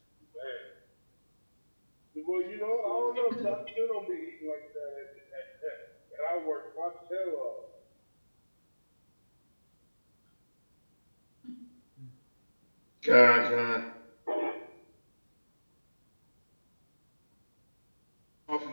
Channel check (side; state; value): both; inverted; correlation -1.00